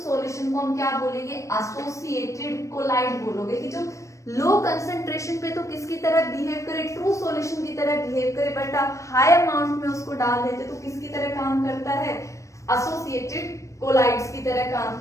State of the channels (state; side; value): late; right; 0.15 ms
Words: सॉल्यूशन को हम क्या बोलेंगे, एसोसिएटेड कोलाइड बोलोगे। कि जो लो कंसंट्रेशन पे तो किसकी तरह बिहेव करे, ट्रू सॉल्यूशन की तरह बिहेव करे, बट आप हाई अमाउंट में उसको डाल देते तो किसकी तरह काम करता है, एसोसिएटेड कोलाइड्स की तरह काम